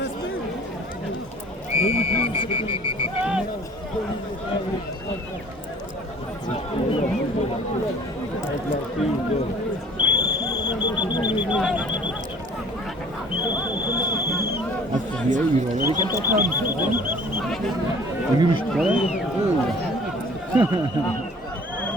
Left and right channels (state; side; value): normal; both; correlation 0.50